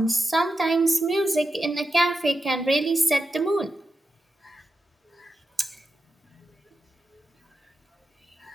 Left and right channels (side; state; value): both; normal; correlation 0.89